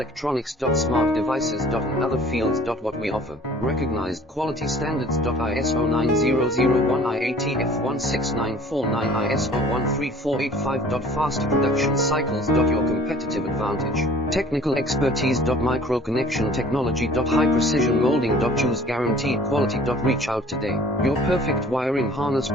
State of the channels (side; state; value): both; normal; correlation 0.50